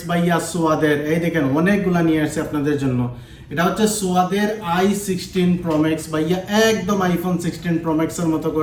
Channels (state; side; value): identical; both; correlation 1.00